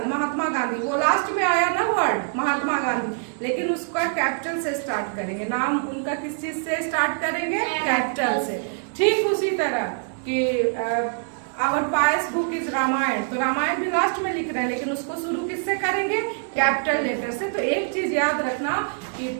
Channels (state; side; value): silent; left; digital silence